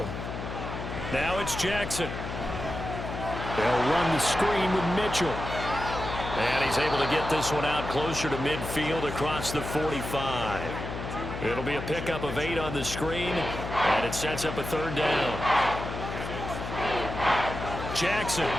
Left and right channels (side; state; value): left; noise; hum, 7 dB below the sound